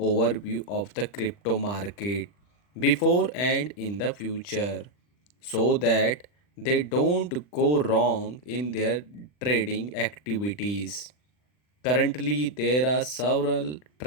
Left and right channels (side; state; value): right; late; 40 ms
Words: of the crypto market before and in the future so that they don't go wrong in their trading activities. Currently, there are several